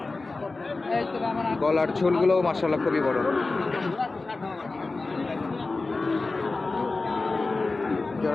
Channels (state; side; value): quieter; right; 3.6 dB